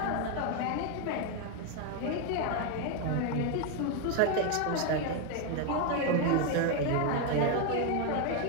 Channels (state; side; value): different; both; correlation 0.01